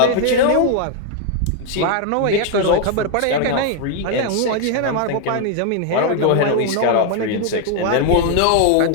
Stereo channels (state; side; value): different; both; correlation 0.00